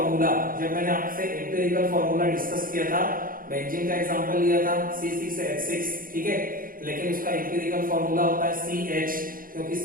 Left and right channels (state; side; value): late; left; 0.41 ms